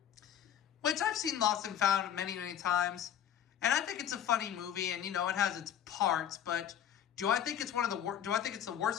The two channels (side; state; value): right; quieter; 9.7 dB